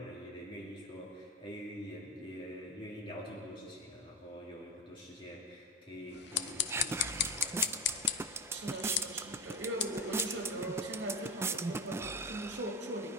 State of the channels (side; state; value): both; normal; correlation 0.19